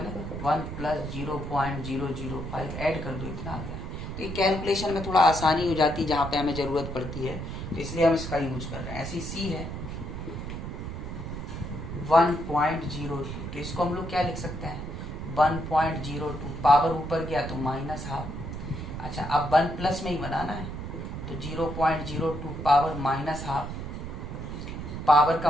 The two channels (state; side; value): noise; right; rumble, 7 dB below the sound